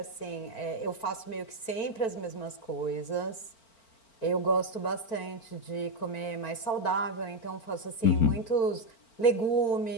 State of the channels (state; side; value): late; right; 4.4 ms